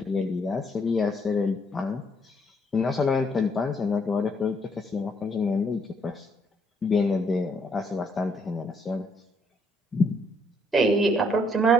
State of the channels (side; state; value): both; normal; correlation 0.70